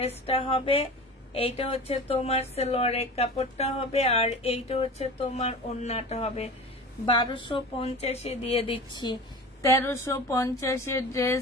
হবে, এইটা হচ্ছে তোমার সালোয়ারের কাপড়টা হবে, আর এইটা হচ্ছে তোমার ওড়নাটা হবে। 1250 দিয়ে দিচ্ছি। 1350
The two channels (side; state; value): both; normal; correlation 0.35